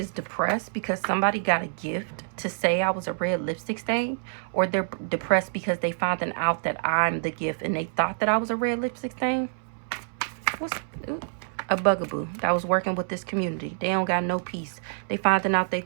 depressed because somebody got a gift to say I was a red lipstick stain. Or they're depressed because they found out that I'm the gift and they thought that I was a red lipstick stain. What's a bugaboo that was working with this community? They don't got no peace. They finding out they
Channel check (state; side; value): silent; left; 60 dB below the other